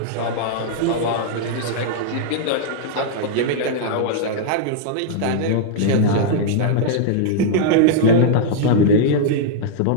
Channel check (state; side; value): different; both; correlation -0.01